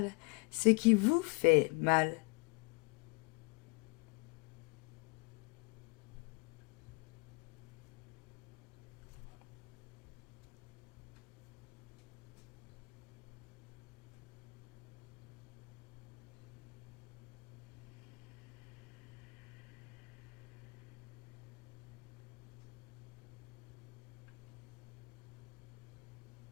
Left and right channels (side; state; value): right; quieter; 32.2 dB